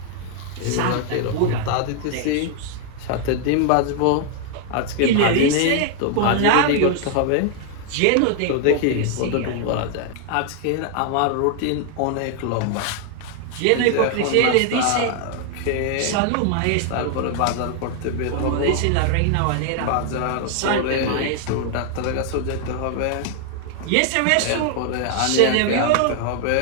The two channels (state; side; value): different; both; correlation 0.00